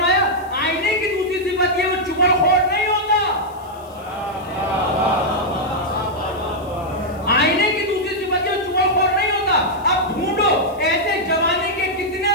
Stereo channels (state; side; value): noise; left; hiss, 27 dB below the sound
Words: آئینے کی دوسری صفت یہ وہ چغل خور نہیں ہوتا. آئینے کی دوسری صفت یہ چغل خور نہیں ہوتا. اب ڈھونڈو ایسے جوانی کے